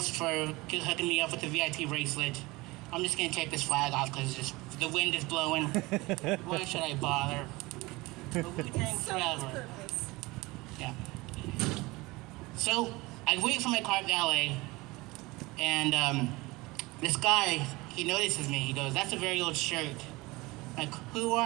for hooking me up with the VIP bracelet. I'm just gonna take this flag off because the wind is blowing. Why should I bother? Wu-Tang forever. Yeah. So I wait for my car at valet, and this guy, he notices me. He goes, that's a very old shirt. I'm like, who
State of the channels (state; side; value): quieter; left; 22.2 dB